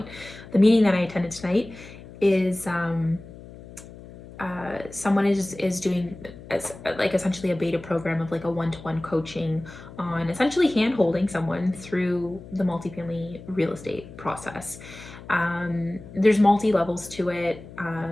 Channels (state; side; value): noise; left; hum, 17 dB below the sound